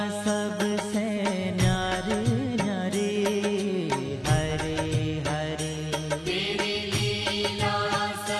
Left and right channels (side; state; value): both; identical; correlation 1.00